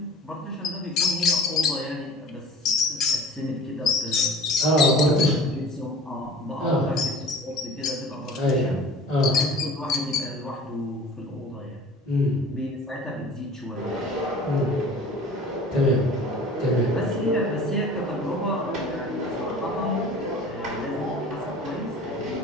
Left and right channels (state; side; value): normal; both; correlation 0.43